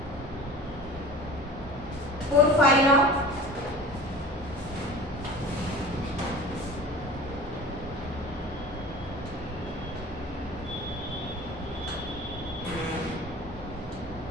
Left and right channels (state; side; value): normal; both; correlation 0.40